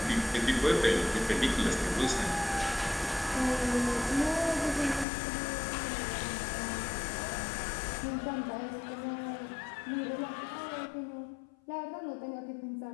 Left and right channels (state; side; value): drops out; right; at 5.1 s